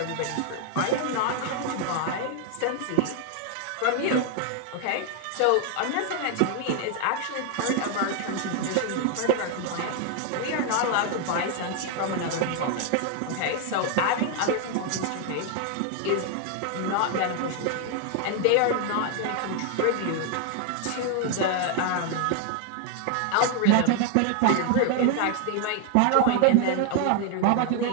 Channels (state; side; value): different; both; correlation 0.00